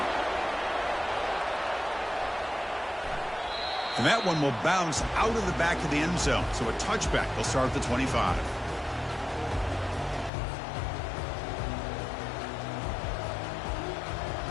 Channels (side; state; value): right; drops out; at 10.3 s